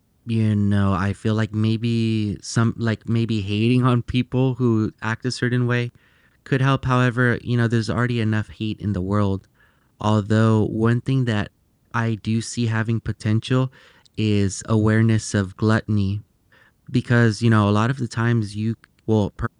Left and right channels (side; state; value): both; identical; correlation 1.00